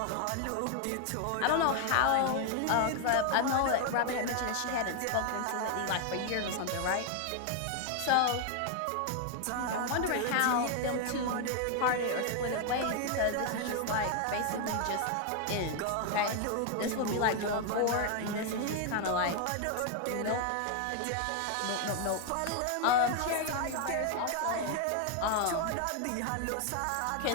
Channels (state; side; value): different; both; correlation 0.00